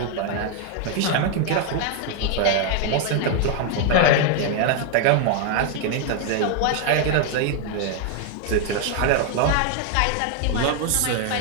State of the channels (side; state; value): both; different; correlation 0.00